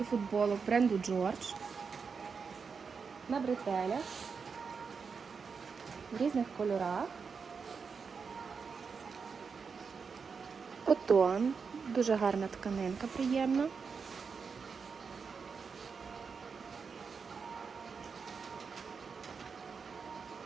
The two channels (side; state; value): left; quieter; 5.5 dB